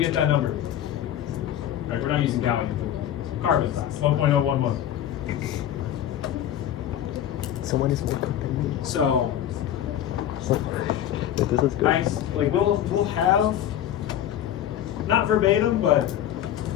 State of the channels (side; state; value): right; quieter; 11.0 dB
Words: get that number. All right, we're not using gallium. Carbon, 1.011. Someone is more than me. So, This is good. nice. Like we'll have not verbatim, but